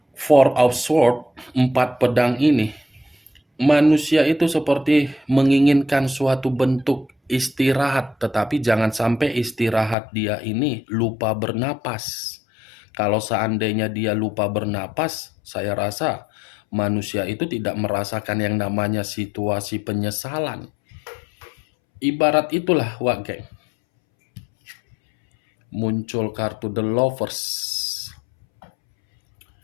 Four of Swords, 4 pedang ini, manusia itu seperti menginginkan suatu bentuk istirahat, tetapi jangan sampai istirahat dia ini lupa bernapas. Kalau seandainya dia lupa bernapas, saya rasa manusia itu tidak merasakan yang namanya situasi penyesalan. Ibarat itulah, Wak Geng. Muncul kartu The Lovers.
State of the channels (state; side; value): drops out; right; at 10.0 s